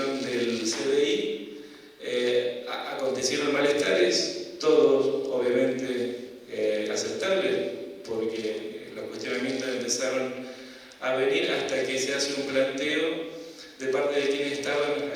del CDI. Acontecieron malestares, todos obviamente aceptables, porque los cuestionamientos empezaron a venir hasta que se hace un planteo de parte de quienes estaban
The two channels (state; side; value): identical; both; correlation 1.00